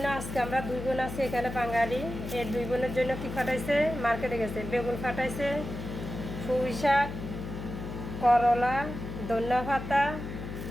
আজকে আমরা 2 বোন আছি এখানে বাঙালি। এই 2 বোনের জন্য কি ফাটাইছে, মার্কেটে গেছে, বেগুন ফাটাইছে, পুঁই শাক, করলা, ধনিয়া পাতা,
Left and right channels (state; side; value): noise; left; hum, 8 dB below the sound